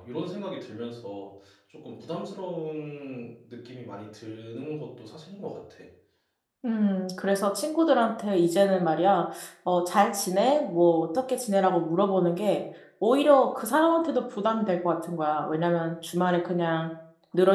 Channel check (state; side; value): identical; both; correlation 1.00